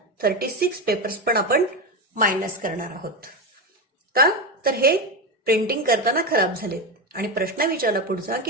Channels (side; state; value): both; normal; correlation 0.15